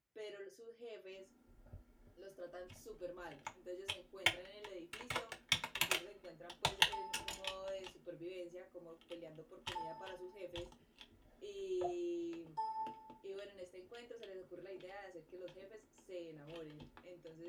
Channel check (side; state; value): both; identical; correlation 1.00